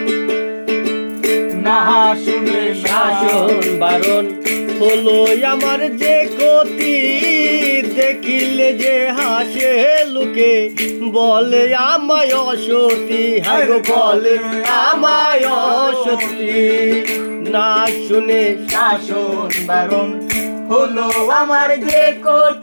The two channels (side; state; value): both; inverted; correlation -1.00